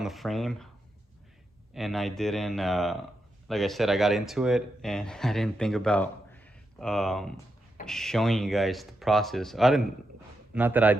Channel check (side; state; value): both; normal; correlation 0.85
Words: the frame, and I didn't, like I said, I got into it, and I didn't think about showing you guys the process. Not that I